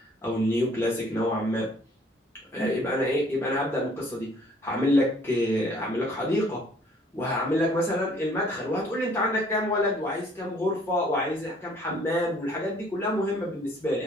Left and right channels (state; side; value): normal; both; correlation 0.59